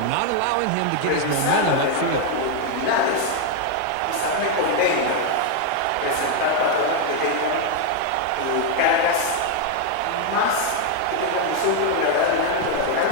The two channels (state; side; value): different; both; correlation 0.01